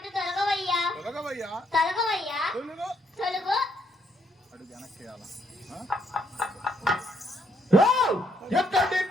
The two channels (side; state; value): both; normal; correlation 0.73